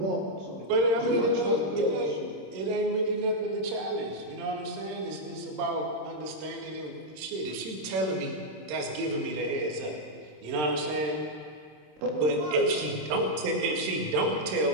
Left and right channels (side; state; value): left; late; 26 ms